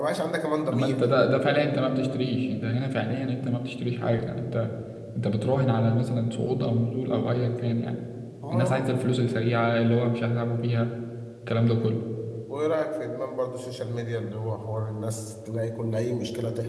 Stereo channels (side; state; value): both; identical; correlation 1.00